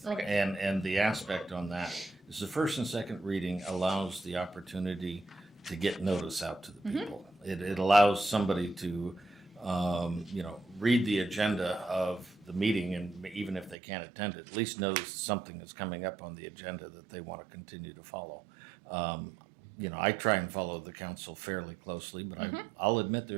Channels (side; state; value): left; drops out; at 13.8 s